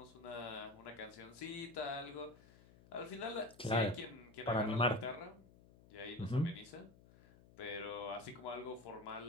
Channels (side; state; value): left; noise; hum, 23 dB below the sound